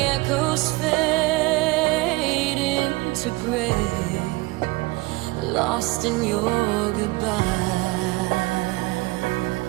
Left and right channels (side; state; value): left; quieter; 22.2 dB